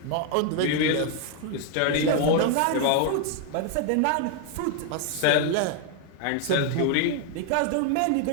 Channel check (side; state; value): both; different; correlation 0.01